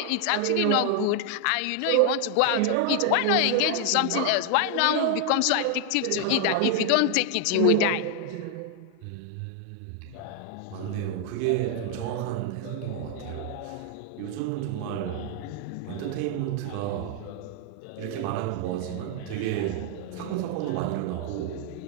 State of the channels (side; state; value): both; different; correlation 0.00